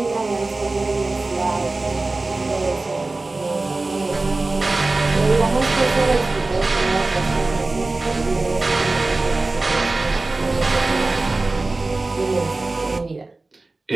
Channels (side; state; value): left; quieter; 3.3 dB